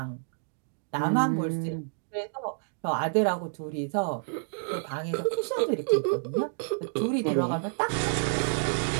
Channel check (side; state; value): left; silent; digital silence